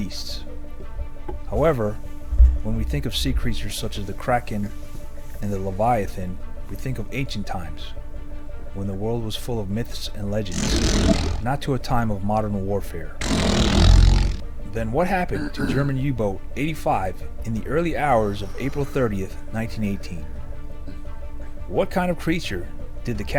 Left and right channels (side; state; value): both; identical; correlation 1.00